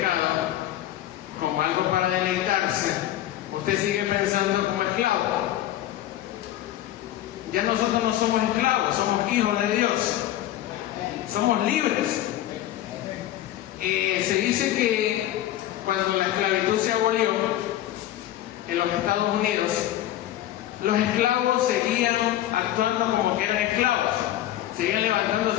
como algo para deleitarse, usted sigue pensando como esclavo. Ya nosotros no somos esclavos, somos hijos de Dios. Somos libres. Se dice que cuando la esclavitud se abolió en los Estados Unidos, los esclavos seguían actuando como que eran esclavos, seguían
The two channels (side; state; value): right; quieter; 13.3 dB